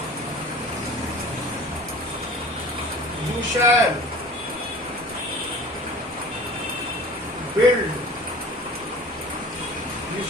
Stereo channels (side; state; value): both; normal; correlation 0.42